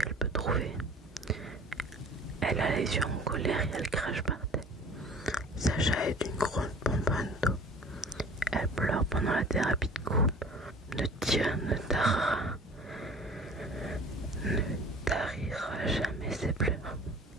peut trouver. Elle a les yeux en colère et elle crache par terre. Sacha est une grosse bonbonne d'eau. Elle pleure pendant la thérapie de groupe. Ne tarira jamais ses pleurs.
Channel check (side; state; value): both; normal; correlation 0.45